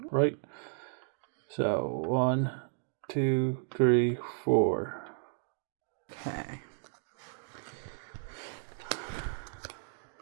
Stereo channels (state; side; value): silent; left; digital silence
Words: right. So 1, 2, 3, 4. Okay.